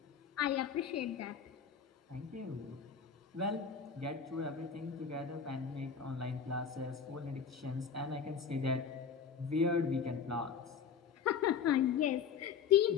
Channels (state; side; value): quieter; right; 6.7 dB